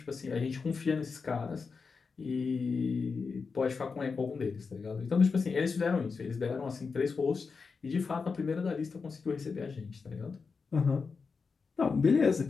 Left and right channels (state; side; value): quieter; right; 5.0 dB